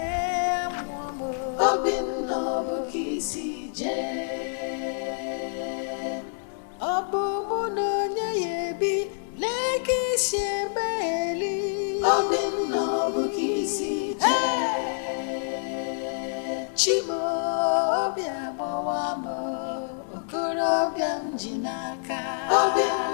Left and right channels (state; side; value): silent; right; 60 dB below the other